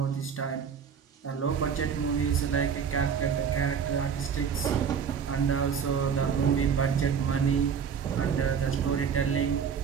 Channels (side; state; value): left; quieter; 7.0 dB